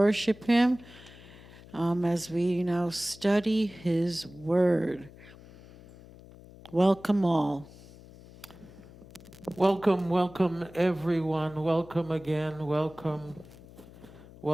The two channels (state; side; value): noise; left; hum, 20 dB below the sound